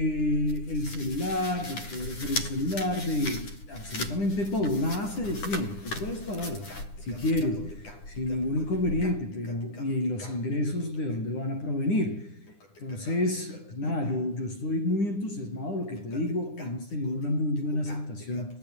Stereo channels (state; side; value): late; right; 9.9 ms